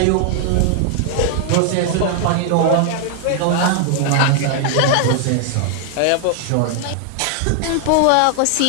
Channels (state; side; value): different; both; correlation 0.00